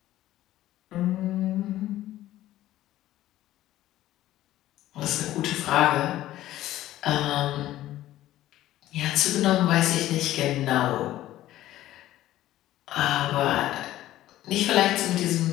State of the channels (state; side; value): quieter; right; 14.4 dB